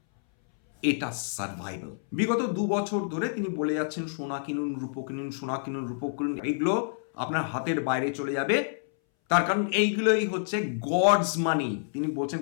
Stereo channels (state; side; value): silent; right; 59 dB below the other